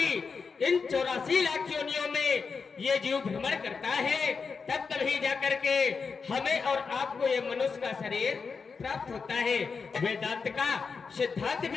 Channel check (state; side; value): quieter; right; 5.2 dB